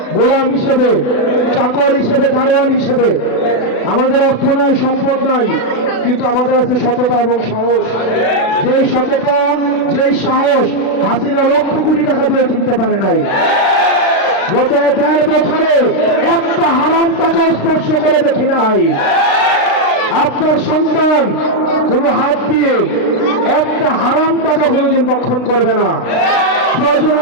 গোলাম হিসেবে, চাকর হিসেবে, দারোয়ান হিসেবে। আমাদের অর্থ নাই, সম্পদ নাই, কিন্তু আমাদের আছে সততা এবং সাহস। যেই সততা, যেই সাহস হাসিনা লক্ষ কোটি টাকা দিয়ে কিনতে পারে নাই। গত ১.৫ বছরে একটা হারাম টাকা স্পর্শ করে দেখি নাই। আপনার সন্তান কোনো হাত দিয়ে একটা হারাম টাকা কোনোদিন ভক্ষণ করবে না। প্রয়োজন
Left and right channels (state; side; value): late; right; 36 ms